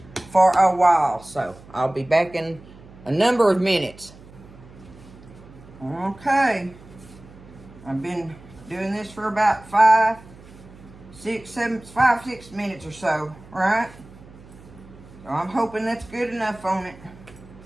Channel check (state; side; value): noise; right; hum, 21 dB below the sound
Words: for a while. So I'll be back in a number of minutes. Okay, I've been doing this for about 6 minutes or so, right? So I'm hoping that's good enough on it.